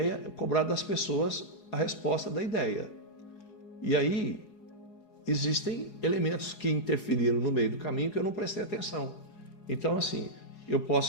cobrar das pessoas a resposta da ideia. E aí existem elementos que interferiram no meio do caminho que eu não prestei atenção. Então, assim, eu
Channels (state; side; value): late; right; 4.8 ms